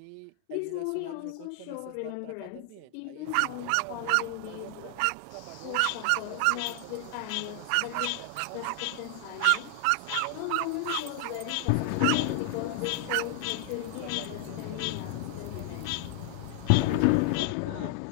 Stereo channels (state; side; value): different; both; correlation 0.00